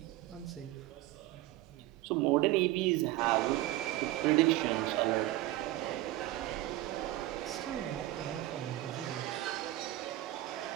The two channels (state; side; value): quieter; left; 16.4 dB